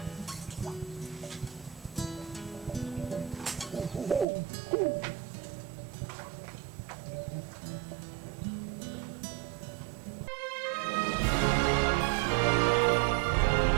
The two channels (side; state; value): left; drops out; at 4.2 s